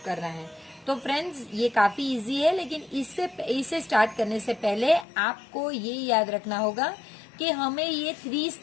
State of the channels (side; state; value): right; drops out; at 5.1 s